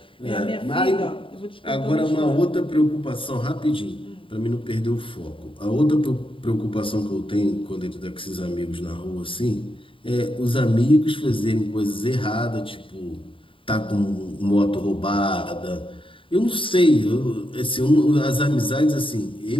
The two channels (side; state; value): right; late; 0.25 ms